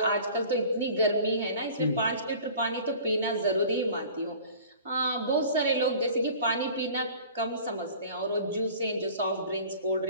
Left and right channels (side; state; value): both; inverted; correlation -0.45